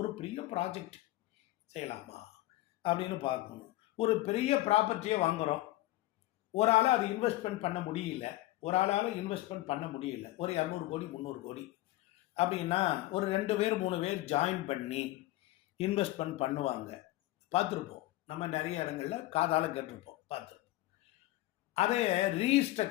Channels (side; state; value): right; quieter; 17.0 dB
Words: பெரிய ப்ராஜெக்ட் செய்யலாமா அப்படின்னு பார்க்கணும். ஒரு பெரிய ப்ராப்பர்ட்டியை வாங்குறோம், ஒரு ஆளாக அது இன்வெஸ்ட்மெண்ட் பண்ண முடியல, ஒரு ஆளால் இன்வெஸ்ட்மெண்ட் பண்ண முடியல, ஒரு 200 கோடி 300 கோடி அப்படின்னா ஒரு 2 பேர் 3 பேர் ஜாயின் பண்ணி இன்வெஸ்ட்மெண்ட் பண்ணுவாங்க. பார்த்துருப்போம், நம்ம நிறைய இடங்கள்ல காதால கேட்டிருப்போம், பார்த்துருப்போம். அதை